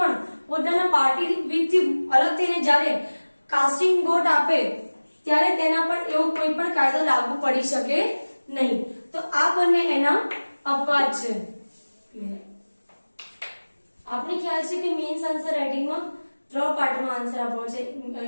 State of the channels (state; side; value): inverted; both; correlation -1.00